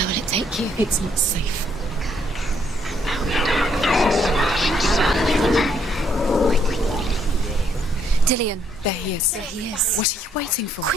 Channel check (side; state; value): both; normal; correlation 0.70